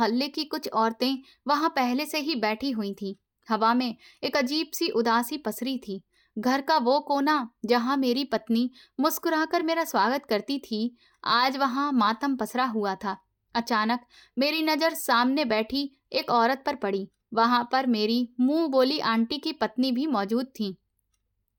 की कुछ औरतें वहां पहले से ही बैठी हुई थीं। हवा में एक अजीब सी उदासी पसरी थी। घर का वो कोना जहां मेरी पत्नी मुस्कुराकर मेरा स्वागत करती थी, आज वहां मातम पसरा हुआ था। अचानक मेरी नजर सामने बैठी एक औरत पर पड़ी। वहां पर मेरी मुंह बोली आंटी की पत्नी भी मौजूद थी।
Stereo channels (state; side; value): identical; both; correlation 1.00